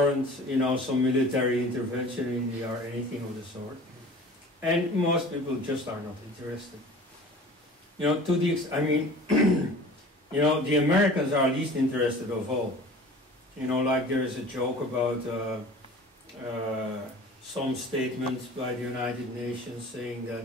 some military intervention in India or anything of the sort. And most people just are not interested. The Americans are least interested of all. Like there is a joke about some statements by the United Nations saying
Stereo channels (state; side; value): normal; both; correlation 0.43